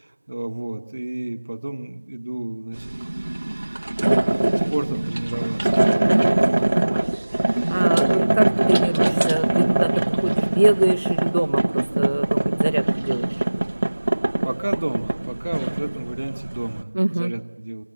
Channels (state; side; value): inverted; both; correlation -1.00